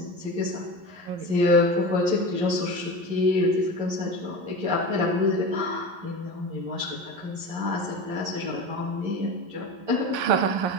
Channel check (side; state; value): left; late; 11 ms